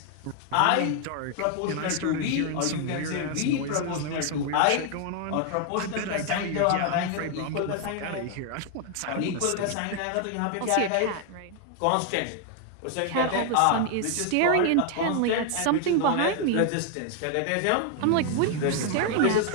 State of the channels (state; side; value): different; both; correlation 0.00